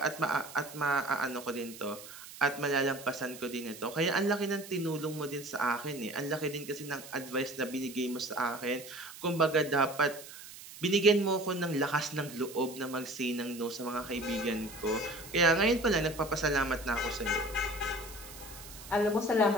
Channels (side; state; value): right; noise; hiss, 15 dB below the sound